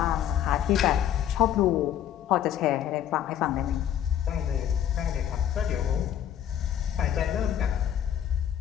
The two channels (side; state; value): right; quieter; 10.4 dB